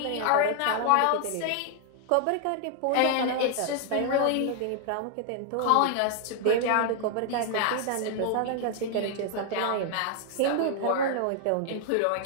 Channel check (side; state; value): both; different; correlation 0.00